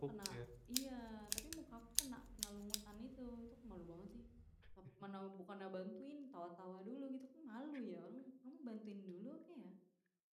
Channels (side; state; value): both; identical; correlation 1.00